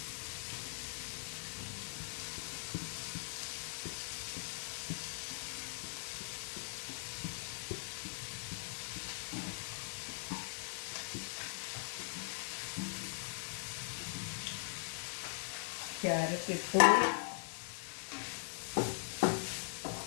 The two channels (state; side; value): silent; right; digital silence